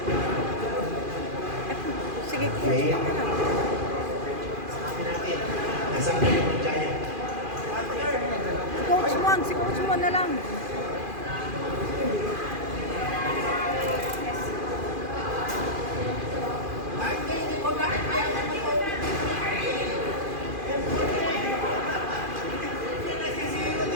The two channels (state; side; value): late; left; 2.4 ms